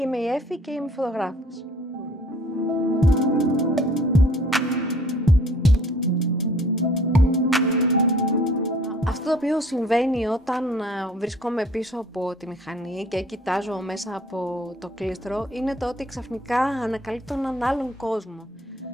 Είμαι η Έφη και είμαι φωτογράφος. Αυτό το οποίο συμβαίνει όταν βρίσκομαι πίσω από τη μηχανή και κοιτάζω μέσα από το κλίστρο είναι το ότι ξαφνικά ανακαλύπτω έναν άλλον κόσμο.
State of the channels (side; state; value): both; normal; correlation 0.54